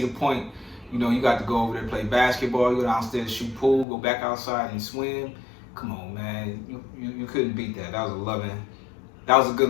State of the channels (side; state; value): right; drops out; at 3.9 s